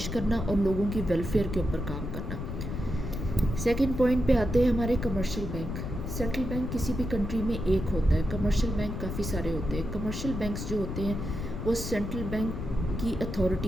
کرنا اور لوگوں کی ویلفیئر کے اوپر کام کرنا. سیکنڈ پوائنٹ پہ آتے ہیں ہمارے کمرشل بینک. سینٹرل بینک کسی بھی کنٹری میں ایک ہوتا ہے، کمرشل بینک کافی سارے ہوتے ہیں. کمرشل بینکس جو ہوتے ہیں وہ سینٹرل بینک کی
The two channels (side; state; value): left; noise; rumble, 5 dB below the sound